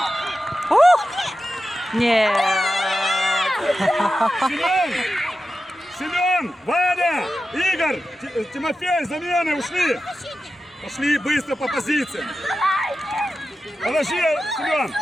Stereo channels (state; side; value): normal; both; correlation 0.92